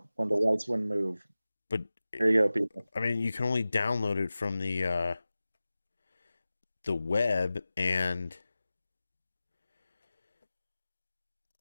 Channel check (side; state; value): both; inverted; correlation -0.96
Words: the lights wouldn't move. but There you go, people. I mean, you can only download it from the web, and